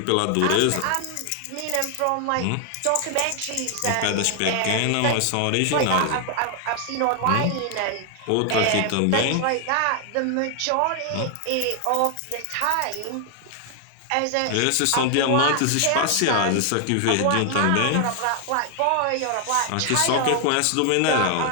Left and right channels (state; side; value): different; both; correlation 0.00